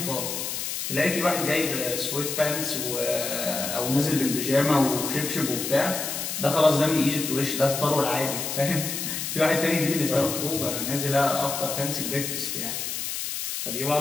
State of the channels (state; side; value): noise; left; hiss, 4 dB below the sound